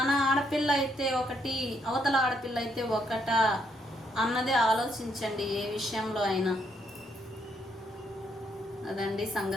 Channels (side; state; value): both; normal; correlation 0.74